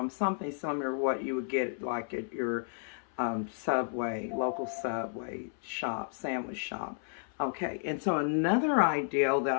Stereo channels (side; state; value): right; silent; 56 dB below the other